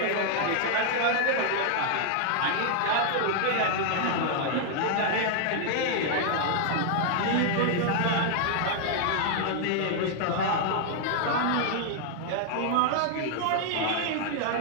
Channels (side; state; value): both; different; correlation 0.00